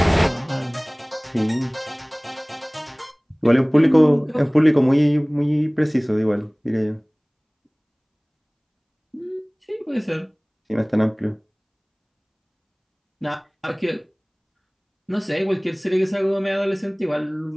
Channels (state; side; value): identical; both; correlation 1.00